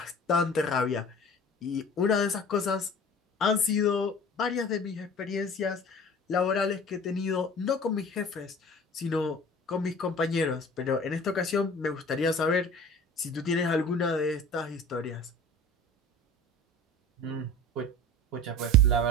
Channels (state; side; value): normal; both; correlation 0.42